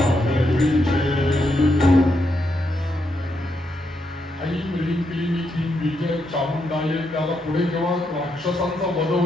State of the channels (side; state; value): both; normal; correlation 0.80